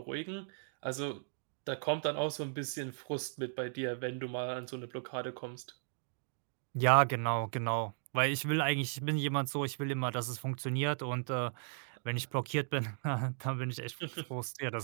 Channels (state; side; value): silent; left; digital silence